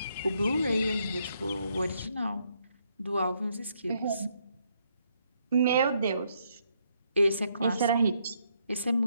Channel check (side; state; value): both; inverted; correlation -0.74